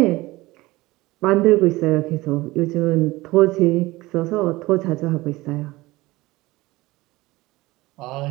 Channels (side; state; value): left; quieter; 19.9 dB